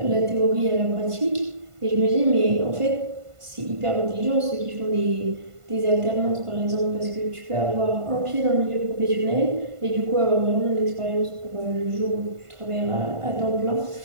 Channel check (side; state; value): left; late; 1.5 ms